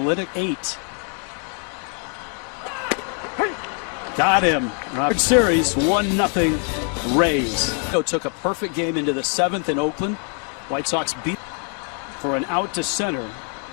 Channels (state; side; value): quieter; right; 38.9 dB